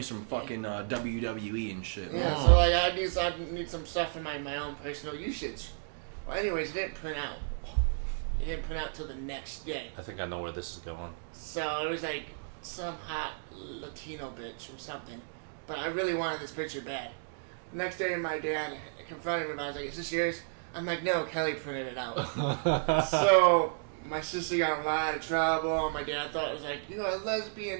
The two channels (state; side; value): silent; left; digital silence